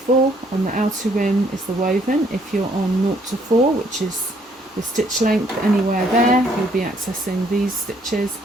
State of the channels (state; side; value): normal; both; correlation 0.66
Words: On the outer rim is the woven. If you're on 0 to 4, which is the stitch length, anywhere there, you'll be accessing these stitches.